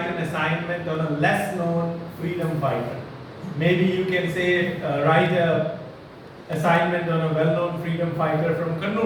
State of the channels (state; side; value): identical; both; correlation 1.00